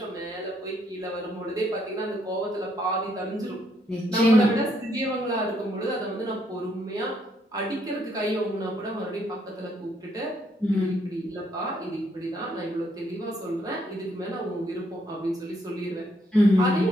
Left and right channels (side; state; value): both; normal; correlation 0.72